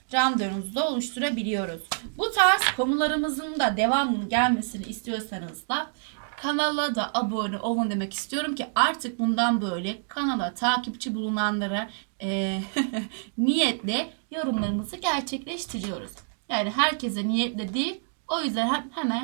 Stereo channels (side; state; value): left; silent; digital silence